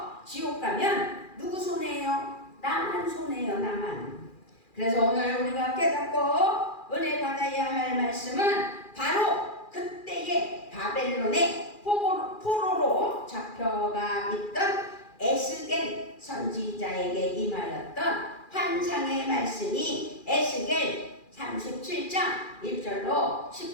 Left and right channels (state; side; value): late; right; 2.4 ms